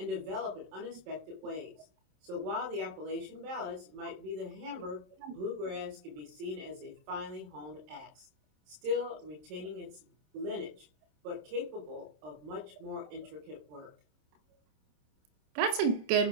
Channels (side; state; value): left; late; 27 ms